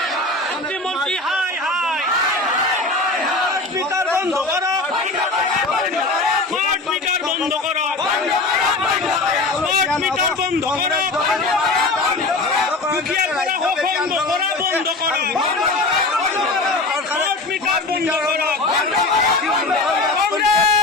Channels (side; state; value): right; quieter; 3.2 dB